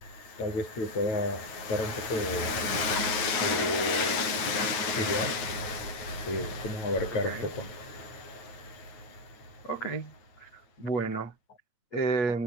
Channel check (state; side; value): late; right; 8.8 ms